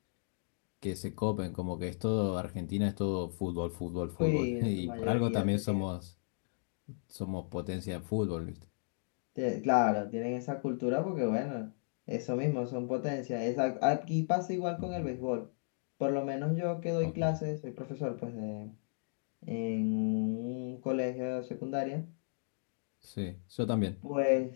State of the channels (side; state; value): right; silent; digital silence